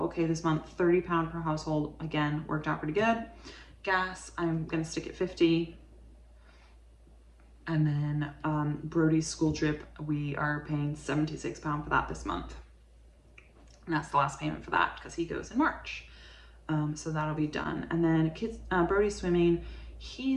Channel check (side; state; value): both; identical; correlation 1.00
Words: okay this month. 30 pound per household, again, worked out pretty good. Gas, I'm going to stick at 50. And then Brody's school trip, we are paying 76 pound for that this month. And that's the last payment for that because he goes in March. So that'll be done. And then kids, Brody's swimming,